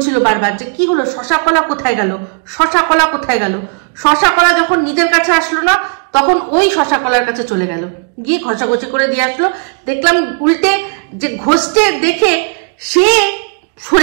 বারবার যে কি হলো, শশা কলা কোথায় গেল, শশা কলা কোথায় গেল। শশা কলা যখন নিজের কাছে আসলো না তখন ওই শশা কলার কাছে চলে গেল, গিয়ে ঘষাঘষি করে দিয়ে আসলো। দেখলাম উল্টে যে ঘষতে দেখে সে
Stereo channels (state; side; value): quieter; left; 38.7 dB